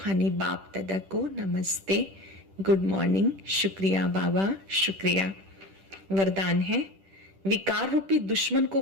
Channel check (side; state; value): left; late; 10 ms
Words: बाप दादा को नमस्ते, गुड मॉर्निंग, शुक्रिया बाबा, शुक्रिया। वरदान है, विकार रूपी दुश्मन को